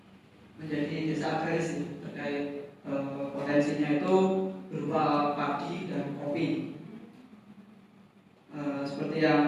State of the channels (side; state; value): both; identical; correlation 1.00